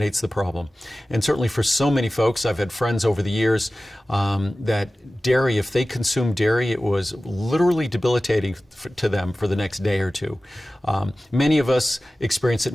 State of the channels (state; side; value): normal; both; correlation 0.96